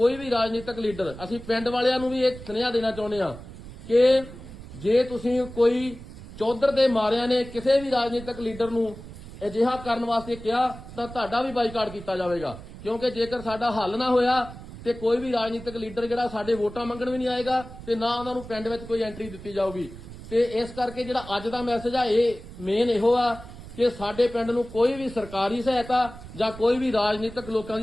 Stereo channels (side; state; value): right; noise; rumble, 15 dB below the sound